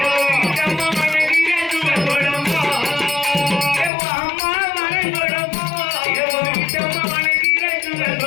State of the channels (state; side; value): drops out; right; at 3.9 s